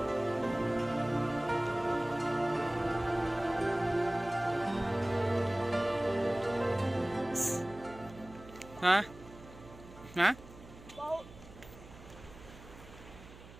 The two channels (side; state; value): right; noise; hum, 18 dB below the sound